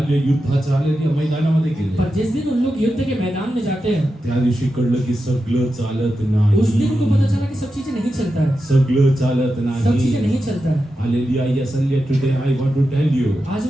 युद्धाच्या हालेलुया मैदानामध्ये गेले, पर जिस दिन उन लोग युद्ध के मैदान में जाते हैं, त्या दिवशी कळलं की सगळं चालत नाही. उस दिन उनको पता चला कि सब चीजें नहीं चलता है, सगळं चालत सब चीजें नाही. नहीं चलता है। Hallelujah, yes, hallelujah, today I want to tell you, आज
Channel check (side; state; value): both; normal; correlation 0.90